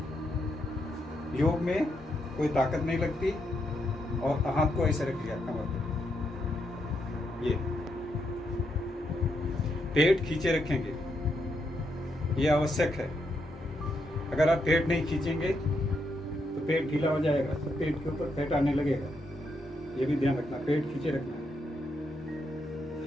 योग में कोई ताकत नहीं लगती। और हाथ को ऐसे रख लिया कमर पे, ये पेट खींचे रखेंगे, ये आवश्यक है। अगर आप पेट नहीं खींचेंगे तो पेट ढीला हो जाएगा, तो पेट के ऊपर फैट आने लगेगा। ये भी ध्यान रखना, पेट खींचे रखना।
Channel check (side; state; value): both; normal; correlation 0.80